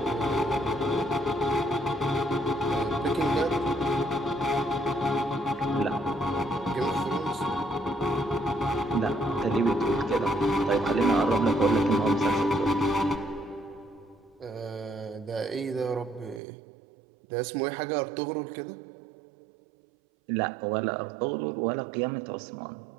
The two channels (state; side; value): drops out; left; at 16.4 s